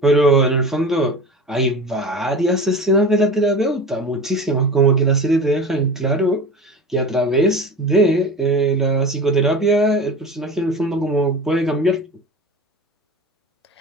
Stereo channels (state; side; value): normal; both; correlation 0.33